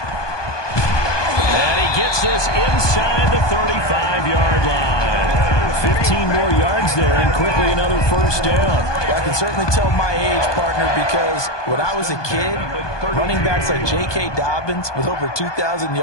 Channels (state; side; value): late; right; 1.2 ms